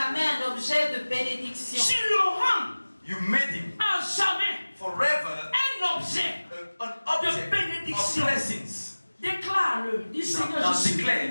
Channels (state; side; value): inverted; both; correlation -1.00